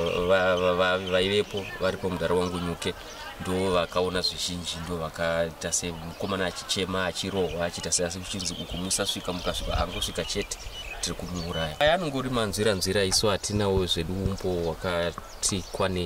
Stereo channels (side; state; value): both; identical; correlation 1.00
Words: vaivepo varipo mudare wangu Nyuke ndo vakaona zvizhinji ndo vakaita semukomana achichema achirohwa achiita seasi kuchinzi uku musasvika mukasvika angosvika chete tiri kumuuraya. Anongori manzira isu hatinawo zvedu umbo wakati